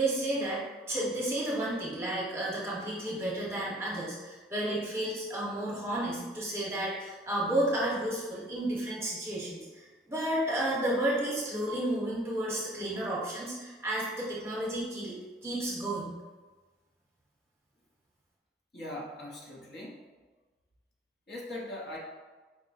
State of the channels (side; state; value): both; normal; correlation 0.52